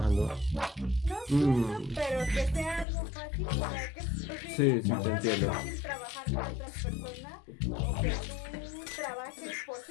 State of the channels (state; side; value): drops out; right; at 2.9 s